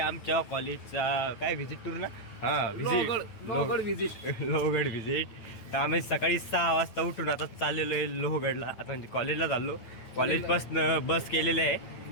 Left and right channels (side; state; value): right; late; 9.1 ms